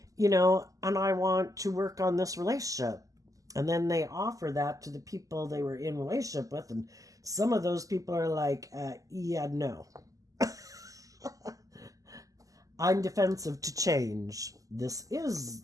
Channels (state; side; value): late; left; 0.17 ms